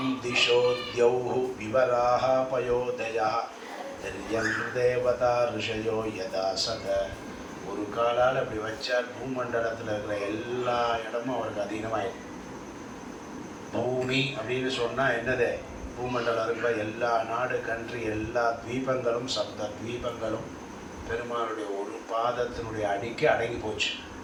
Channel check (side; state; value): both; identical; correlation 1.00